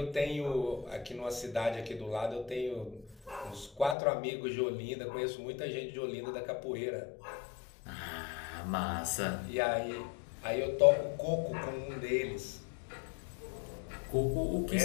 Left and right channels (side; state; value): right; drops out; at 4.0 s